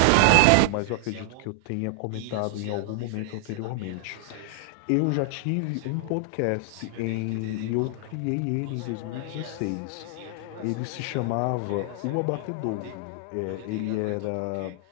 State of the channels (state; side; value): different; both; correlation 0.00